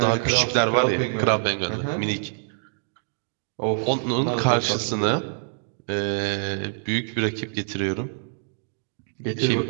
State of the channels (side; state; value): left; silent; digital silence